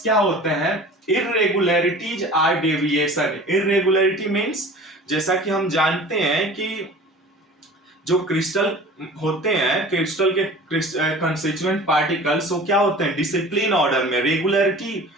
क्या होते हैं, इररेगुलरिटीज आर डेविएशन। इररेगुलरिटी मींस, जैसा कि हम जानते हैं कि जो क्रिस्टल होते हैं, क्रिस्टल के कंस्टिट्यूएंट पार्टिकल्स, वो क्या होते हैं, डिसिप्लिन ऑर्डर में, रेगुलरिटी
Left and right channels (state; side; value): normal; both; correlation 0.42